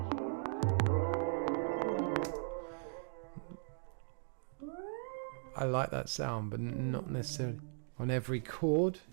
I like that sound, but not necessarily on every chord.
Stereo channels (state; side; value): silent; left; digital silence